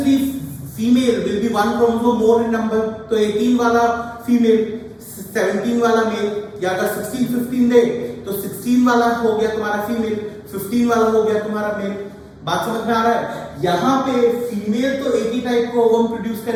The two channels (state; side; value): identical; both; correlation 1.00